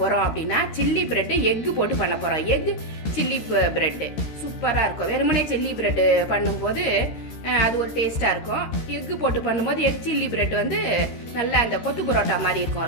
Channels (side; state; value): right; late; 13 ms